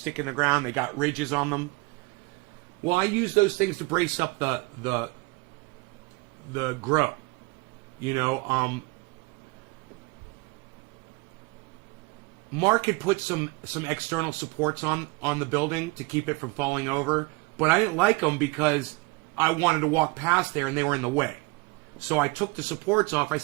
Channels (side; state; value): left; quieter; 26.5 dB